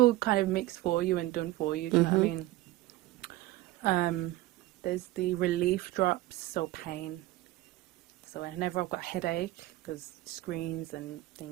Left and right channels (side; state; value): left; quieter; 16.9 dB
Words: kind of mixed for you and done for you. Do you know what I mean? There's the relief drops, so pain. So whenever I've got headache, because screens and